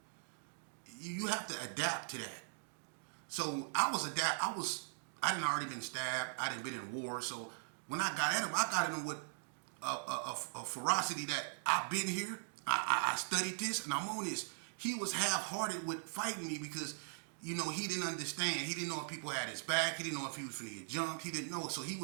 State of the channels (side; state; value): left; silent; digital silence